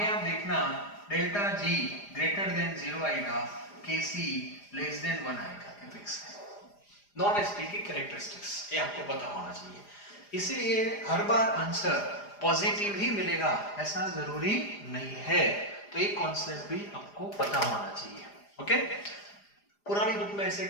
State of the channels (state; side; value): late; right; 4.9 ms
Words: आप देखना डेल्टा जी ग्रेटर देन 0 आएगा, के सी लेस देन 1 आएगा, ये फिक्स है। नॉन एसपी की कैरेक्टरिस्टिक्स ये आपको पता होना चाहिए, इसीलिए हर बार आंसर पॉजिटिव ही मिलेगा ऐसा जरूरी नहीं है, तो ये कॉन्सेप्ट भी आपको पता होना चाहिए। ओके, पुरानी बुक में ऐसे